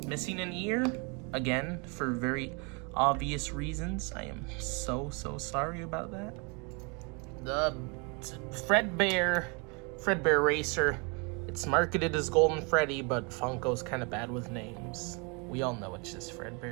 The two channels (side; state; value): left; quieter; 32.6 dB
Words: missing an ear, again, for very obvious reasons. I am so sorry about that. The Fredbear Racer, it's marketed as Golden Freddy, but Funko's kind of bad with names. We all know it's just